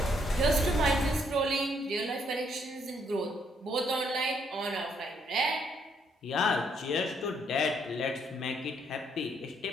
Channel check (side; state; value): both; normal; correlation 0.71